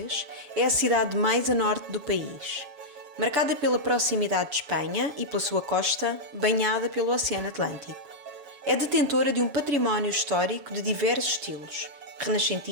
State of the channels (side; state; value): left; late; 6.9 ms